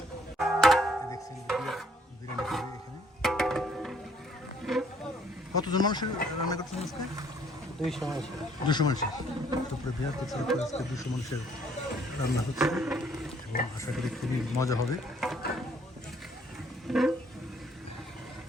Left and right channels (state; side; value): normal; both; correlation 0.63